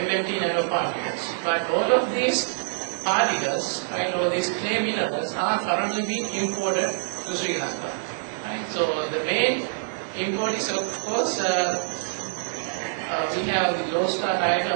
nanoparticles. But all of these particles, or these clay minerals, are currently being imported to Sri Lanka. Right? So the main import is, of course, we have the Low Star Tire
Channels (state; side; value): silent; left; digital silence